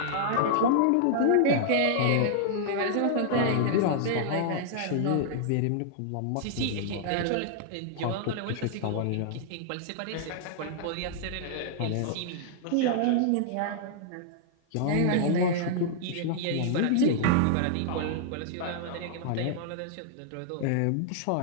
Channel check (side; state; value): both; different; correlation -0.01